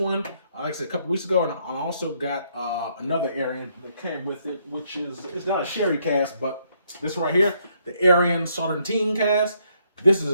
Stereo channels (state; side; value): inverted; both; correlation -0.71